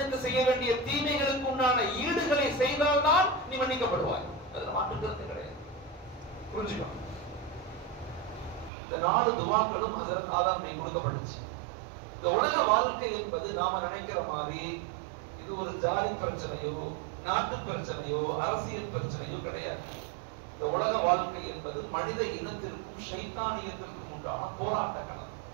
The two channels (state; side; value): drops out; left; at 8.7 s